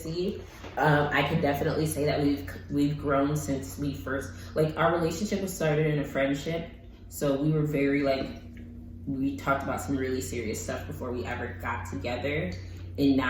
I can definitely say that we've grown since we first, like, our relationship was started in a friendship. So we were very, like, we talked about some really serious stuff before we ever got together. And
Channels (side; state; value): both; identical; correlation 1.00